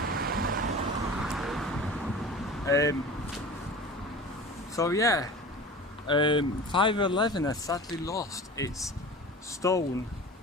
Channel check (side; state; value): both; normal; correlation 0.36